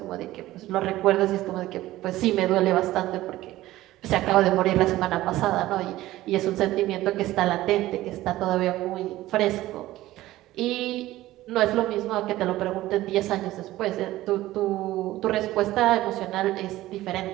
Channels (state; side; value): quieter; left; 16.1 dB